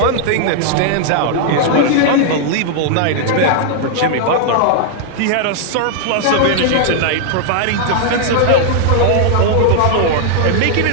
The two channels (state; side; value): different; both; correlation -0.01